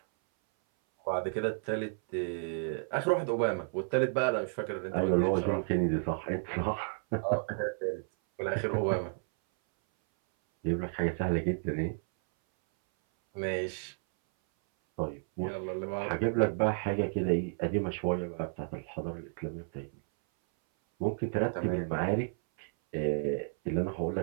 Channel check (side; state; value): left; silent; 56 dB below the other